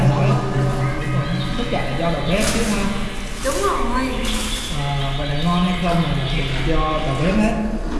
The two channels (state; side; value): identical; both; correlation 1.00